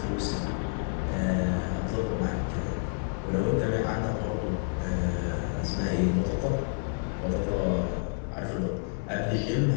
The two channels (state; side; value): silent; right; digital silence